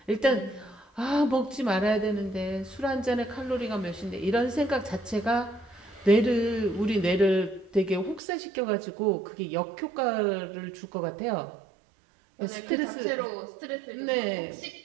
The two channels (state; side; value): drops out; left; at 8.2 s